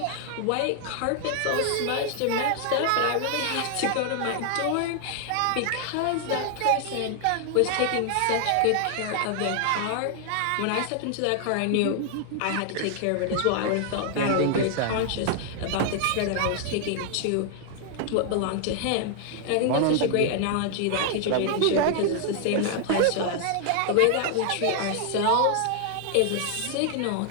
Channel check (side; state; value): both; different; correlation 0.00